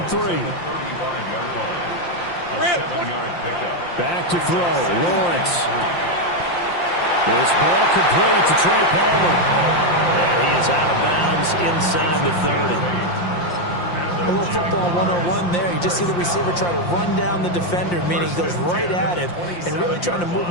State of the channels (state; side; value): late; right; 5.7 ms